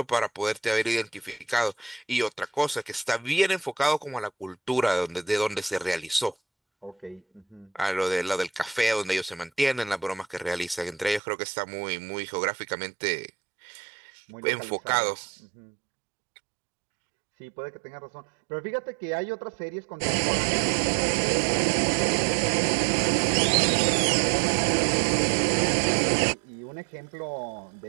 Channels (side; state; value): left; drops out; at 11.2 s